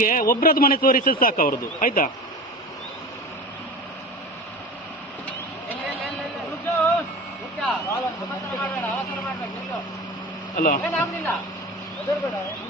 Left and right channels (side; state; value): both; normal; correlation 0.33